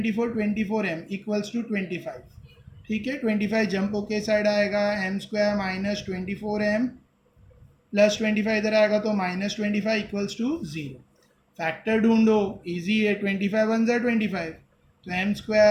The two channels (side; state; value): both; identical; correlation 1.00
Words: equals to 25। ठीक है, 25 जंप होके साइड आएगा, m square minus 24m plus 25 इधर आएगा तो माइनस 25 इक्वल्स टू 0। फैक्टर ढूंढो, इजी है, 25 1 ज़ा 25, तो m